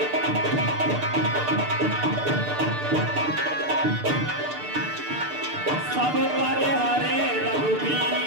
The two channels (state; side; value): late; left; 6.7 ms